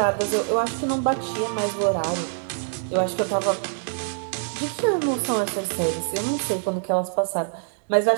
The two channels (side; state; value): left; silent; digital silence